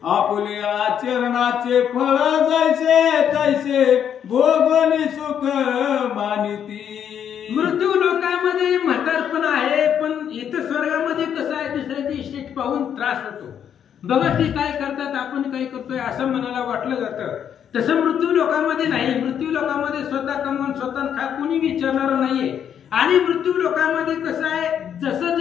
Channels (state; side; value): quieter; right; 8.8 dB